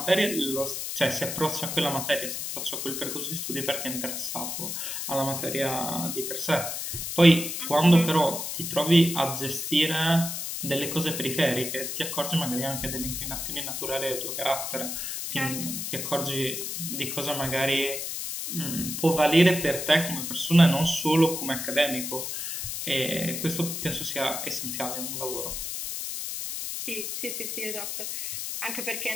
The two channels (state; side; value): noise; left; hiss, 4 dB below the sound